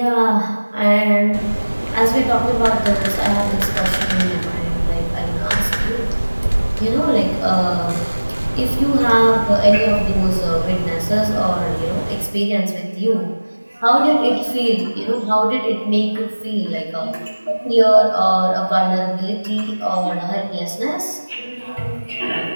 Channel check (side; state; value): both; inverted; correlation -1.00